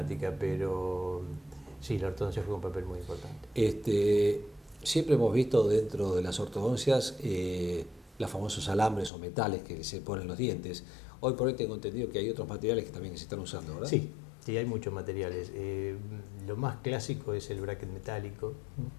pero sí, la ortodoncia juega un papel muy importante. Siempre hemos visto dentro de las ortodoncias los famosos alambres o metales que se ponen en los dientes. Hoy por hoy tengo entendido que hay otros materiales que también se están usando, ¿verdad? Sí, hay muchos materiales. Lo más clásico es el bracket metálico,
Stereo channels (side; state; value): right; drops out; at 9.1 s